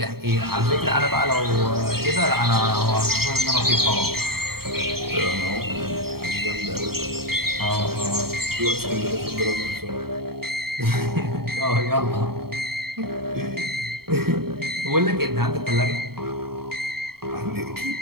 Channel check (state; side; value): late; left; 0.95 ms